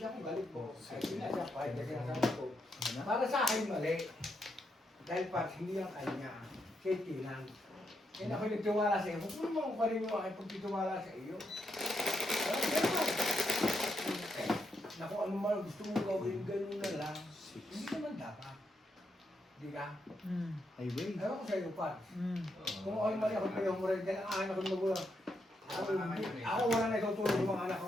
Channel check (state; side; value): normal; both; correlation 0.81